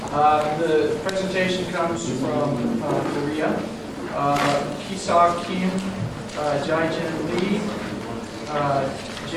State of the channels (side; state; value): both; identical; correlation 1.00